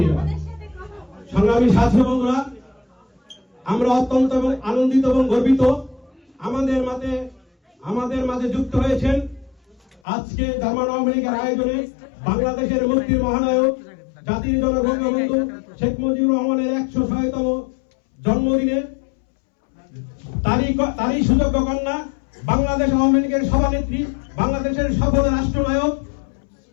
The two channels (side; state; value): right; drops out; at 10.0 s